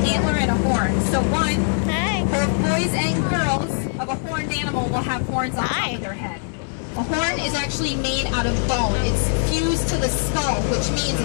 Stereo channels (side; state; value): right; silent; digital silence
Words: antler and a horn. So one, both boys and girls of a horned animal will have horns on top of their head. A horn is actually made out of bone. It's fused to the skull, which means